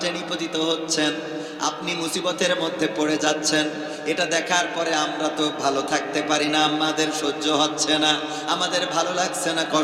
নিপতিত হচ্ছেন, আপনি মুসিবতের মধ্যে পড়ে যাচ্ছেন। এটা দেখার পরে আমরা তো ভালো থাকতে পারি না, আমাদের সহ্য হচ্ছে না, আমাদের ভালো লাগছে না,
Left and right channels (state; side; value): identical; both; correlation 1.00